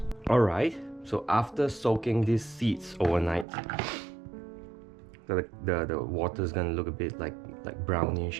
Alright, so after soaking these seeds overnight, the water is gonna look a bit like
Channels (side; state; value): left; drops out; at 3.5 s